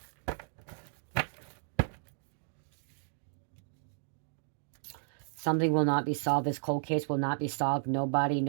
Something will not be solved. This cold case will not be solved. Nobody,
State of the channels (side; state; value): left; silent; digital silence